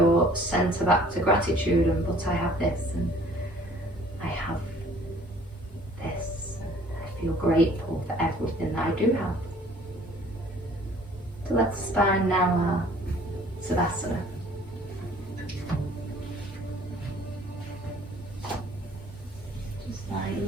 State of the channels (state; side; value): normal; both; correlation 0.54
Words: center back to gratitude, and but I have this and I have this and I feel grateful for everything that I do have. So let's spine now our Savasana.